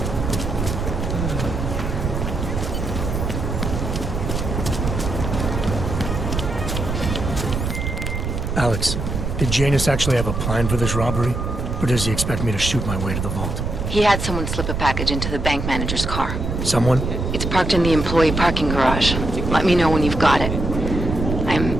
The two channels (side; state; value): right; noise; rumble, 3 dB below the sound